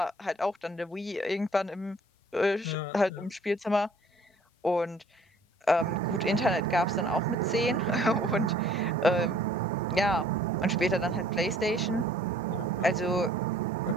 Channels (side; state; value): both; normal; correlation 0.56